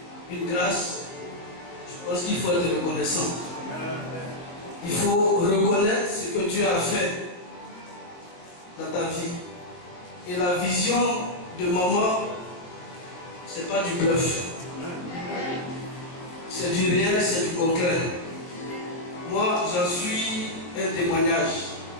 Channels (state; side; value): late; right; 22 ms